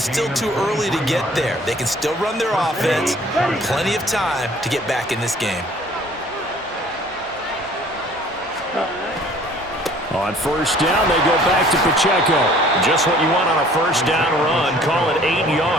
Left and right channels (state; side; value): normal; both; correlation 0.53